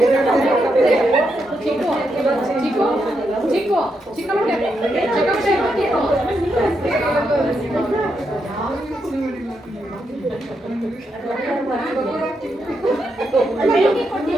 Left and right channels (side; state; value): both; normal; correlation 0.82